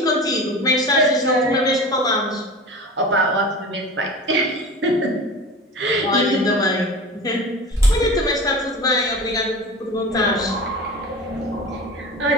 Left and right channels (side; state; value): both; normal; correlation 0.33